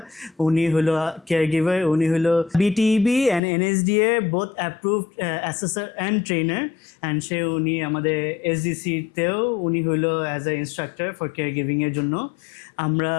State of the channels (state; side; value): drops out; right; at 3.4 s